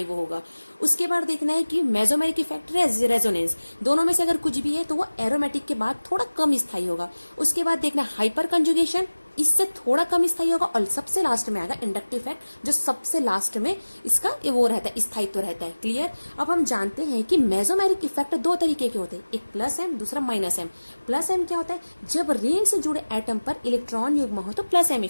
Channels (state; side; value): inverted; both; correlation -1.00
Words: वो होगा। उसके बाद देखना है कि मेसोमेरिक इफेक्ट, रेजोनेंस, दोनों में से अगर कुछ भी है तो वो एरोमेटिक के बाद थोड़ा कम स्थायी होगा। उसके बाद देखना हाइपर कंजुगेशन, इससे थोड़ा कम स्थायी होगा। और सबसे लास्ट में आएगा इंडक्टिव इफेक्ट, जो सबसे लास्ट में इसका वो रहता है, स्थायित्व रहता है। क्लियर। अब हम जानते हैं कि मेसोमेरिक इफेक्ट 2 तरीके के होते हैं, एक प्लस एम, दूसरा माइनस एम। प्लस एम क्या होता है? जब रिंग से जुड़े एटम पर इलेक्ट्रॉन युग्म हो तो प्लस एम